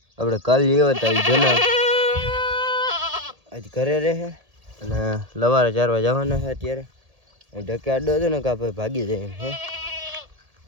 આપણે કાલ લેવા હતા જના આજ ઘરે રહે અને લવારે ચારવા જવાના છે. અત્યારે ઢકે આડો હતો ને કે આપણે ભાગી જાય એમ હે.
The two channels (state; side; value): late; left; 1.8 ms